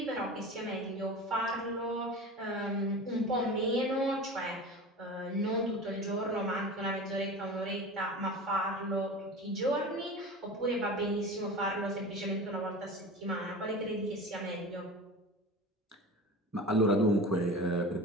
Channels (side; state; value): both; normal; correlation 0.33